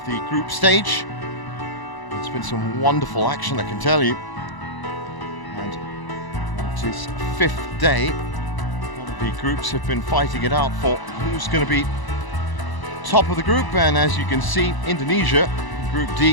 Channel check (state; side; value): late; right; 1.0 ms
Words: the group stage. It's been some wonderful action, I can tell you. And it is 5th day. A lot of The groups have been fighting it out for who's going to be top of the group, and as you can see, Indonesia, Group